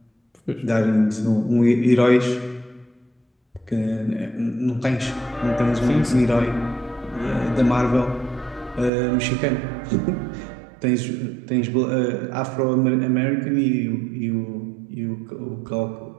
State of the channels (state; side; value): drops out; left; at 8.9 s